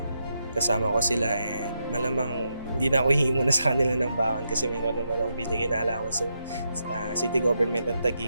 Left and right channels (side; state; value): both; inverted; correlation -0.83